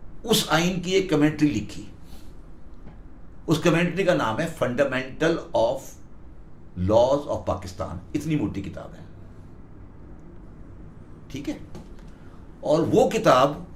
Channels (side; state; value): both; identical; correlation 1.00